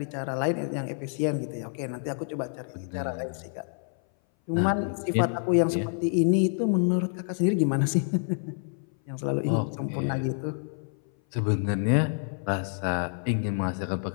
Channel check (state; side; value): silent; right; 58 dB below the other